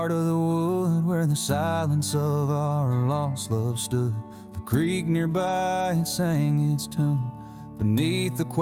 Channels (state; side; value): identical; both; correlation 1.00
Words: of the wood, where the silence of our lost love stood. The creek nearby, it sang its tune beneath the